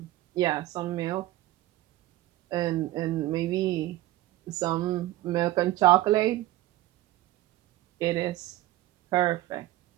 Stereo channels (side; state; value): left; quieter; 16.1 dB